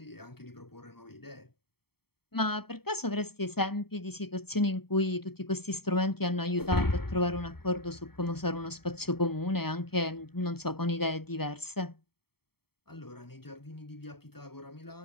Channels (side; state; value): right; late; 0.96 ms